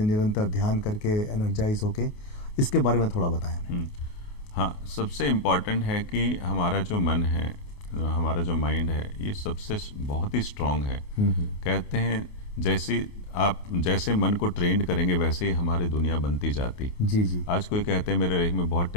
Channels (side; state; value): right; late; 28 ms